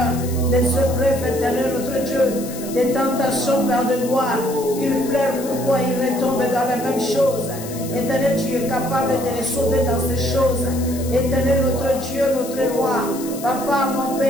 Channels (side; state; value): left; noise; hiss, 13 dB below the sound